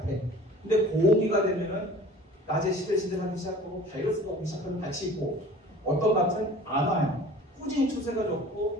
근데 고온기가 되면은 낮에 시들시들하기 시작하고 바이러스가 오기 시작하는 밭이 있고 어떤 밭은 안 와요. 꾸준히 추세가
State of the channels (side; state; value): both; normal; correlation 0.44